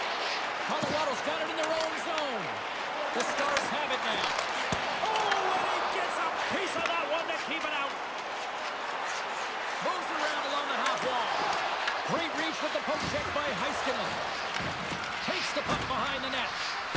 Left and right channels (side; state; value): both; identical; correlation 1.00